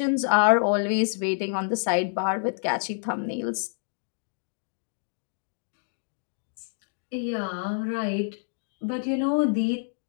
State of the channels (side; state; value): right; silent; digital silence